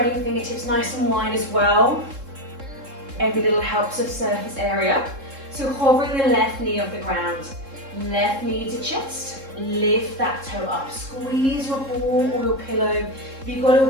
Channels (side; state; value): left; late; 3.7 ms